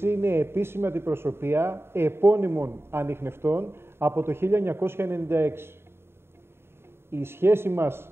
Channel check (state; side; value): late; left; 0.12 ms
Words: είναι επίσημη αντιπροσωπεία επώνυμων ανιχνευτών από το 1996. Η σχέση μας